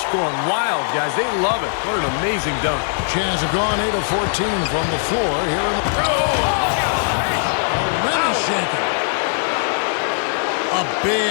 going wild, guys. They love it. What an amazing dunk. Jazz have gone 8 of 14 from the floor here in the. Shaking. A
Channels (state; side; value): silent; right; 63 dB below the other